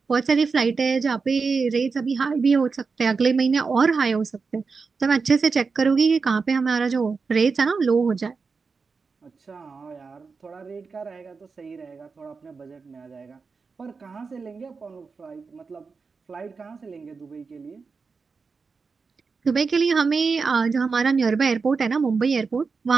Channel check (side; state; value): left; quieter; 4.8 dB